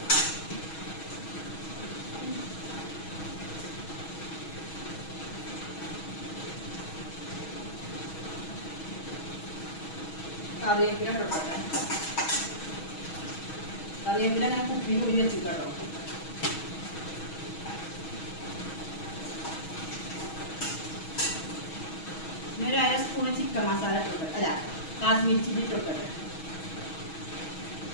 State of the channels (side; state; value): right; late; 6.3 ms